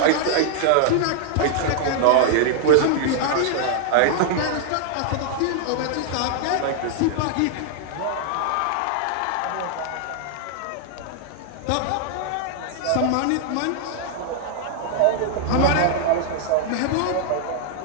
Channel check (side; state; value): both; different; correlation 0.00